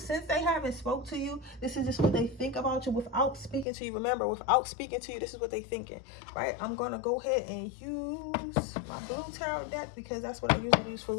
they haven't spoke to you, this is just what they think about you without speaking to you. Remember, without speaking to you, this is what they thinking, right? I'm going to go ahead and use my blue tarot deck, because that's what I usually use for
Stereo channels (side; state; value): right; drops out; at 3.7 s